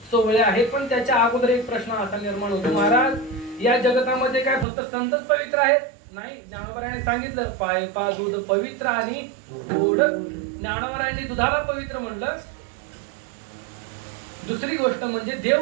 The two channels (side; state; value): left; drops out; at 4.7 s